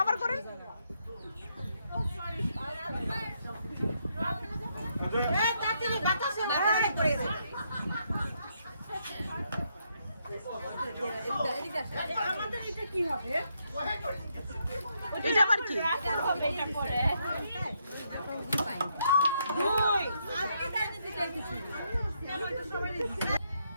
করেন আমাদের এটা কি হবে? এটা আবার কি এটা পরে দুই আজকে তাই দিতে চাইছি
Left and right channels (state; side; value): inverted; both; correlation -0.76